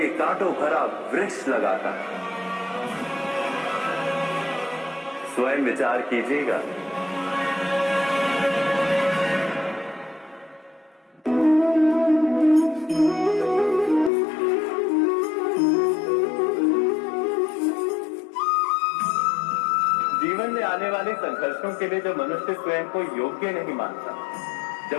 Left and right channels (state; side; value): drops out; right; at 14.1 s